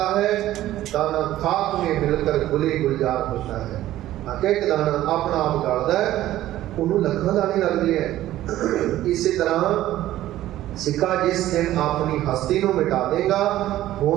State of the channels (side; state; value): left; quieter; 14.2 dB